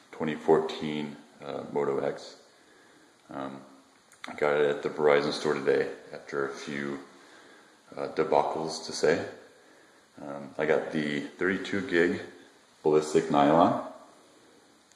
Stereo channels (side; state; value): both; identical; correlation 1.00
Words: 2014 Moto X. I got it at the Verizon store today after a few debacles to say. I got the 32 gig ballistic nylon.